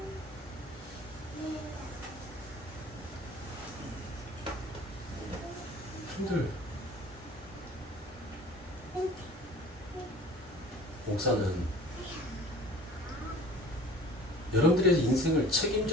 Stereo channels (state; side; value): normal; both; correlation 0.45